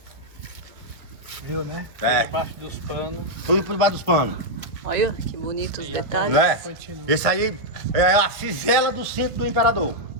Viu, né? É. Debaixo dos panos. Tudo por debaixo dos panos. Olha que bonitos detalhes. Não é? Continua. Esse aí é a fivela do centro do imperador.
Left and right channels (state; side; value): late; left; 1.5 ms